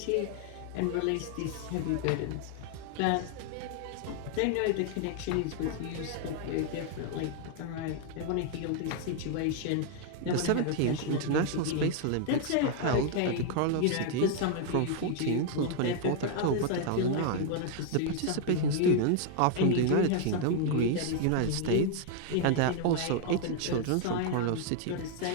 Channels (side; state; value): both; different; correlation 0.00